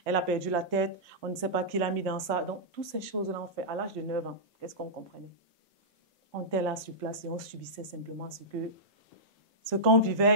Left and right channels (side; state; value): right; late; 1.2 ms